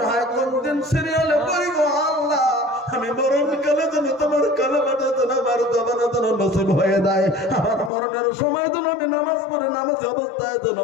হয় কোন দিন সিরিয়ালে পড়ি গো আল্লাহ, আমি মরণকালে যেন তোমার কালেমাটা যেন আমার জবানে যেন নসিব হয়ে যায়। আমার মরণের সময় যেন আমি নামাজ পড়ে নামাজ অবস্থায় যেন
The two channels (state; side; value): drops out; right; at 7.9 s